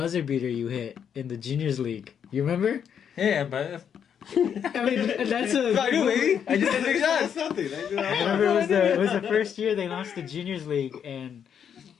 beater you hit in the juniors league. You remember? Yeah, but I mean, that's a. I do, baby. I just did big shots. Something. I remember it was the first year they launched the juniors league, and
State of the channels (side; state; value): right; quieter; 8.1 dB